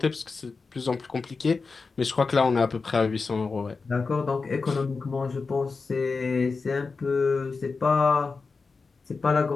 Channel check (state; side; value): quieter; right; 4.4 dB